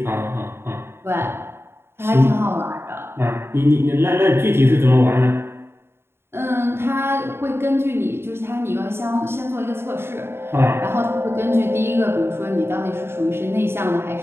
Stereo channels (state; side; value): late; left; 0.11 ms